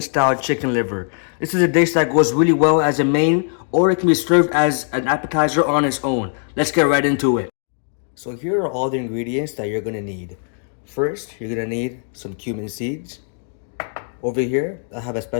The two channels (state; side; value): silent; right; digital silence